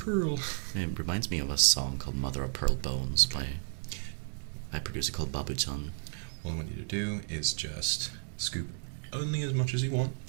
It reminds me of a song called Mother of Pearl Bones by a producer called Babu Chan. All I want you to do is just scoop only as much as you want.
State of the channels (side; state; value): left; silent; digital silence